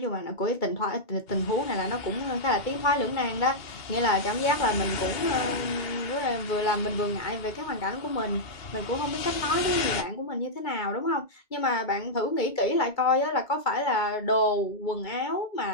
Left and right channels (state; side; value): late; right; 2.3 ms